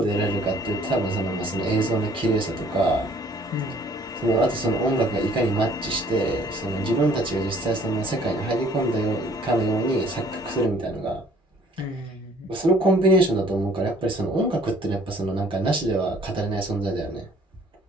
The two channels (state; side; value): normal; both; correlation 0.58